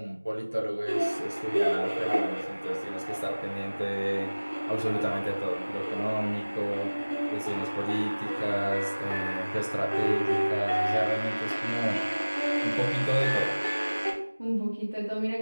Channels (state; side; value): inverted; both; correlation -1.00